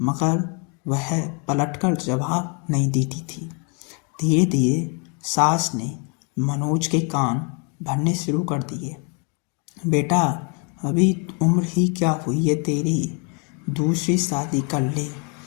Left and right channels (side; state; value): right; quieter; 36.3 dB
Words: वह पलटकर जवाब नहीं देती थी। धीरे धीरे सास ने मनोज के कान भरने शुरू कर दिए। बेटा, अभी उम्र ही क्या हुई है तेरी? दूसरी शादी कर ले,